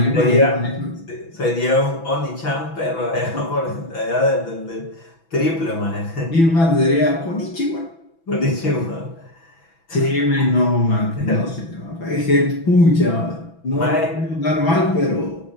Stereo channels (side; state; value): right; late; 6.1 ms